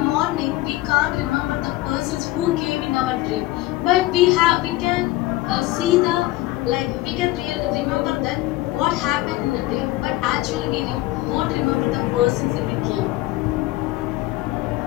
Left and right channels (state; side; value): quieter; right; 17.4 dB